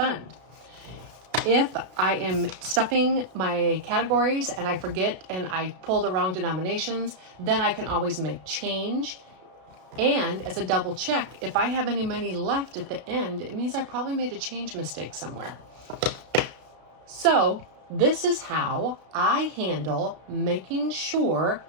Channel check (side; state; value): left; late; 32 ms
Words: If I am stuffing my categories and I forget and I pull the wrong denominations, then I can always make change. And as a double check, if I have any money left at the end, it means I probably made a change mistake somewhere. So this is how I handle making sure